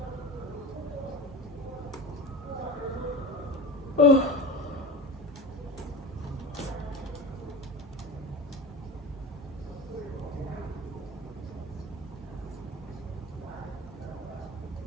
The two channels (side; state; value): both; normal; correlation 0.30